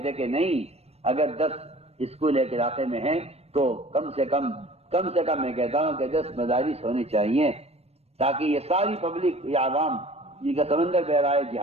کہ نہیں، اگر 10 اسکول ایک علاقے میں ہیں تو کم سے کم میں کہتا ہوں کہ 10 مدارس ہونے چاہیے، تاکہ یہ ساری پبلک، یہ عوام جن کا سمندر بہ رہا ہے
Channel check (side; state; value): left; late; 0.30 ms